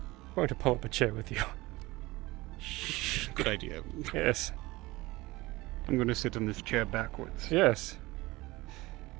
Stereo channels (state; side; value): quieter; left; 20.6 dB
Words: going to pull up a chair with you. Good idea. Yes. I'm going to sit in this chair backwards. Yes.